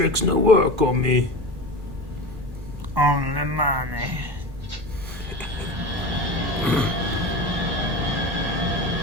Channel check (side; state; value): left; late; 1.1 ms